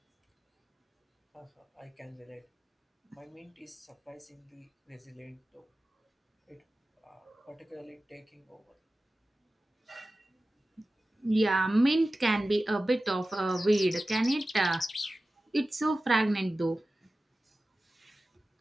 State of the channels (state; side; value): normal; both; correlation 0.95